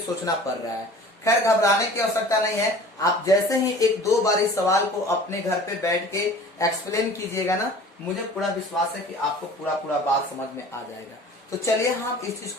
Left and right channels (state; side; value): normal; both; correlation 0.44